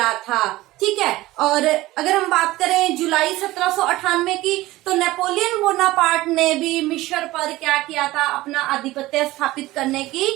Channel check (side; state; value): left; quieter; 17.9 dB